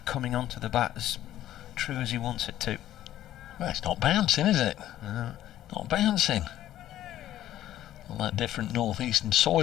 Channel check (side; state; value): right; quieter; 12.9 dB